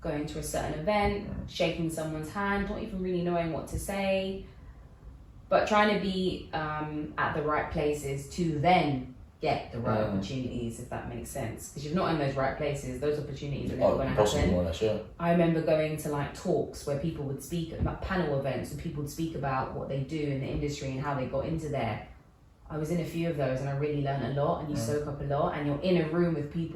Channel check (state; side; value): identical; both; correlation 1.00